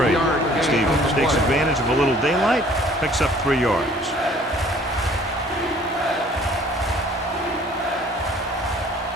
Stevens takes advantage of a little daylight, picks up 3 yards.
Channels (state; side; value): normal; both; correlation 0.54